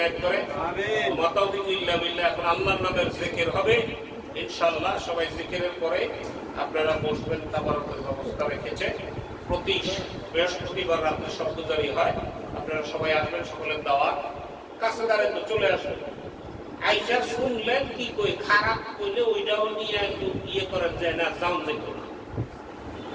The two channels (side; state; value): both; identical; correlation 1.00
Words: করে। আমিন। ওয়া তাওফিকু ইল্লা বিল্লাহ। এখন আল্লাহর নামের জিকির হবে ইনশাআল্লাহ। সবাই জিকিরের পরে আপনারা বসবেন, তাবারকের ব্যবস্থা রেখেছে। প্রতি বৃহস্পতিবার রাতে শব্দজারি হয়, আপনারা সবাই আসবেন, সকলের দাওয়াত। কাছে দাঁড়ায় তো চলে আসবেন। আইসা শুনলেন কি কই, খারাপ কইলে ওইটাও নিয়ে একটু ইয়ে করার যায় না, যাও যেত না।